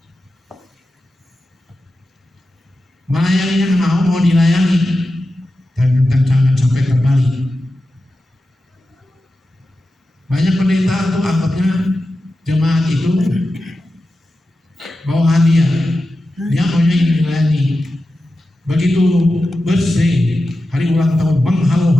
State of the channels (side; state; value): both; normal; correlation 0.92